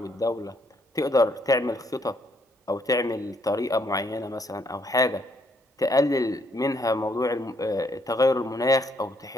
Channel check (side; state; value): both; normal; correlation 0.71